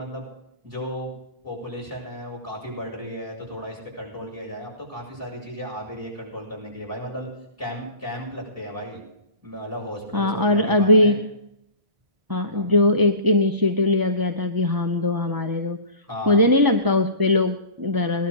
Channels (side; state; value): left; late; 1.0 ms